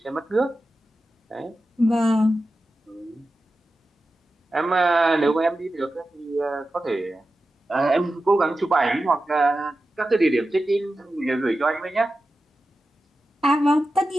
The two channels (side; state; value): both; normal; correlation 0.92